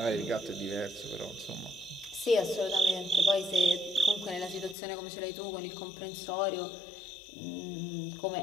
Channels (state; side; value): drops out; right; at 4.8 s